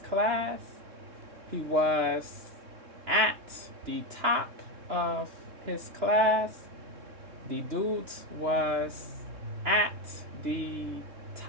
class. He was at the top of his class. The dude was at the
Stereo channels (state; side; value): late; left; 2.9 ms